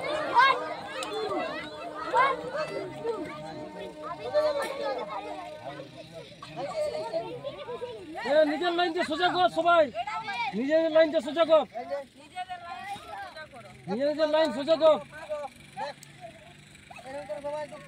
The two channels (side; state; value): both; identical; correlation 1.00